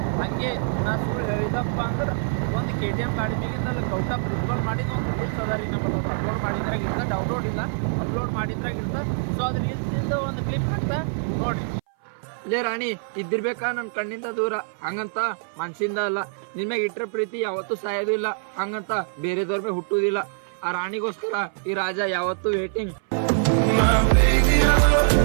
ಹಂಗೆ ನಾ ಸುಳ್ಳು ಹೇಳಿದಪ್ಪ ಅಂದ್ರೆ ಒಂದು KTM ಗಾಡಿ ಮೇಲಿಂದ ಗೌಟ ಪ್ರಿನ್ಸಿಪಲ್ ಮಾಡಿದ ಒಂದು ರೀಲ್ಸ್ ಅದ ರೀ. ನಮ್ಮಲ್ಲಿ ಅಪ್ಲೋಡ್ ಮಾಡಿದ್ರಾಗ ಇರ್ತ, ಡೌನ್ಲೋಡ್ ಇಲ್ಲ, ಅಪ್ಲೋಡ್ ಮಾಡಿದ್ರಾಗ ಇರ್ತ. ಸೊ ಅದು ರೀಲ್ಸಿಂದ ಒಂದು ಕ್ಲಿಪ್ ಹಾಕ್ತಾ ನೋಡ್ರಿ. ಇಲ್ಲೇ ರಾಣಿ ಇದ್ದಿರ್ಬೇಕಾ ನನ್ನ ಕಣ್ಣಿಂದ ದೂರ, ಹಂಗಂತ ಮನ್ಸಿಂದ ಅಲ್ಲ. ನಿನ್ಮ್ಯಾಗ ಇಟ್ಟರೆ ಪ್ರೀತಿ ಯಾವತ್ತೂ ಸಾಯೋದು ಇಲ್ಲ, ಹಂಗಂತ ಬೇರೆದವ್ರ ಮೇಲೆ ಹುಟ್ಟುವುದಿಲ್ಲ. ಆ ರಾಣಿಗೋಸ್ಕರ ಈ ರಾಜ ಯಾವತ್ತೂ ವೇಟಿಂಗ್.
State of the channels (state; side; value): silent; left; 59 dB below the other